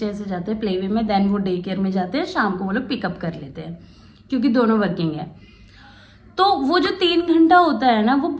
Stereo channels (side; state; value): both; identical; correlation 1.00